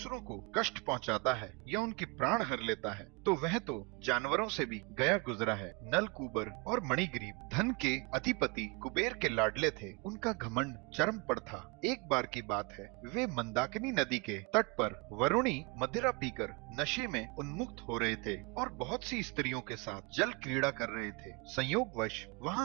को कष्ट पहुंचाता है या उनके प्राण हर लेता है तो वह तो जानवरों से भी गया गुजरा है। नलकूबर और मणिग्रीव धन के अधिपति कुबेर के लाडले थे। उनका घमंड चरम पर था। एक बार की बात है, वे मंदाकिनी नदी के तट पर वरुणी मदिरा पीकर नशे में उन्मुक्त हो रहे थे और बहुत सी स्त्रियों के साथ जल क्रीड़ा कर रहे थे। संयोगवश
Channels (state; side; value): quieter; left; 29.1 dB